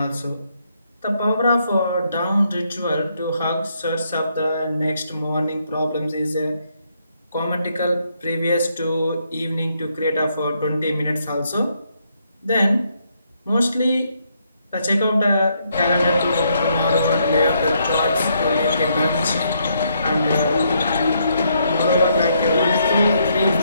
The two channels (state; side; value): inverted; both; correlation -0.74